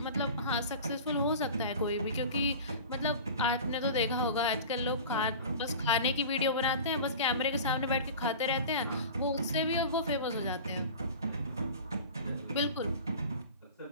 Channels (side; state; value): both; inverted; correlation -0.36